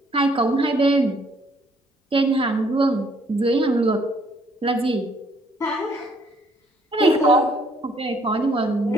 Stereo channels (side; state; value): both; normal; correlation 0.65